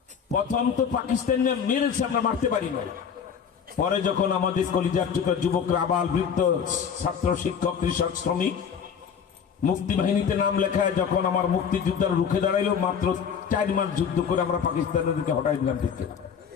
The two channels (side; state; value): right; quieter; 7.2 dB